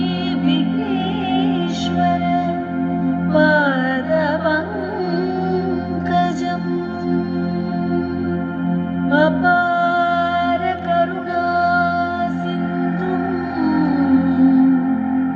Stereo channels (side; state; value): both; identical; correlation 1.00